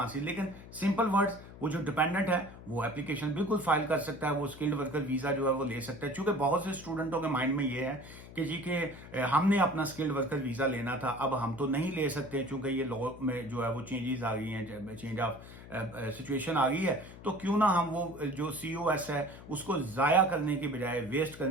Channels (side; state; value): left; noise; hum, 16 dB below the sound